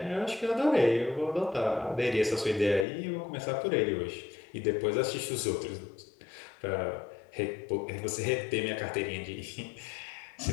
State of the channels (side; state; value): right; drops out; at 2.9 s